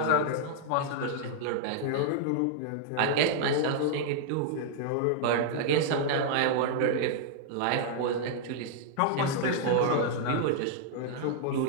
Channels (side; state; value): both; different; correlation -0.01